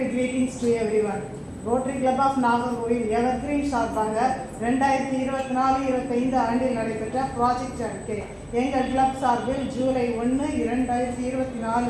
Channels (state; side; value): identical; both; correlation 1.00